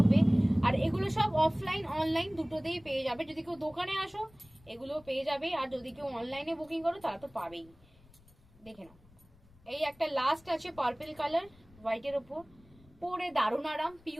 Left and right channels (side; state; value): left; noise; rumble, 27 dB below the sound